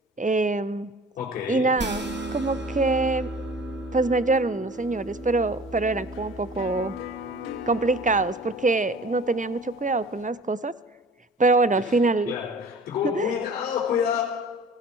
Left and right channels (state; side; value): normal; both; correlation 0.45